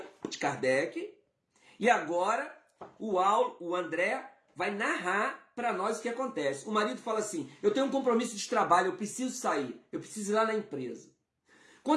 de Kardec, e agora o André vai narrar para nós o que acontece. O marido fala assim, eu tenho um compromisso de trabalho, eu preciso sair, eu preciso ir lá na empresa.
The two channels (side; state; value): both; identical; correlation 1.00